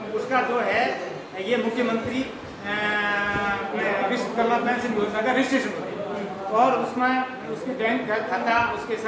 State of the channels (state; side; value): identical; both; correlation 1.00